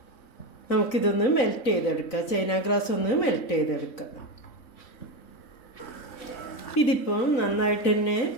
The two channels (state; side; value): late; right; 3.9 ms